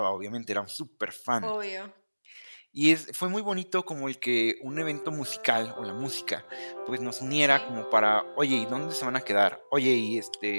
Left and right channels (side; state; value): both; inverted; correlation -1.00